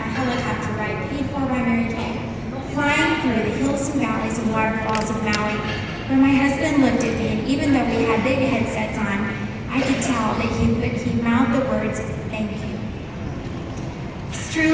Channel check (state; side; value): identical; both; correlation 1.00